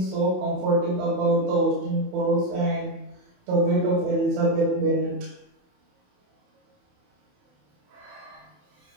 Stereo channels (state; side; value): late; left; 27 ms